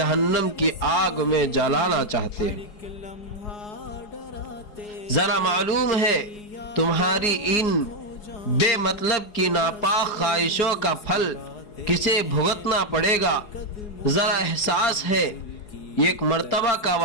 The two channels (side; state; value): right; late; 4.8 ms